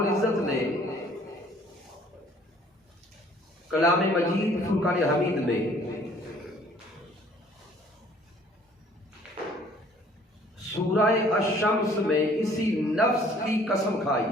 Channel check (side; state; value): both; normal; correlation 0.57